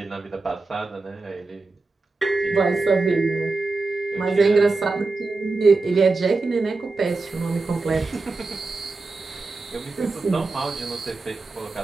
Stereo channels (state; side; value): quieter; left; 3.6 dB